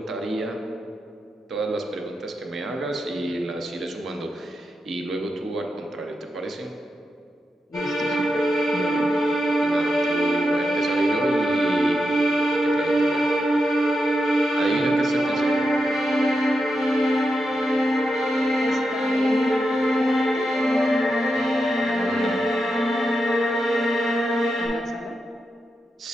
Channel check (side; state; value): both; normal; correlation 0.87